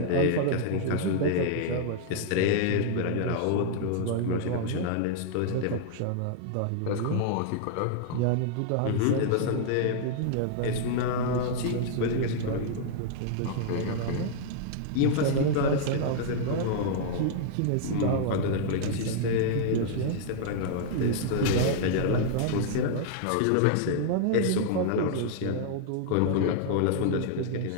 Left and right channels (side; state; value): both; different; correlation -0.01